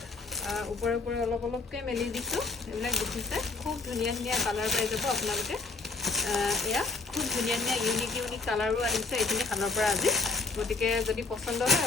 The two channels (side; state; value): right; quieter; 3.9 dB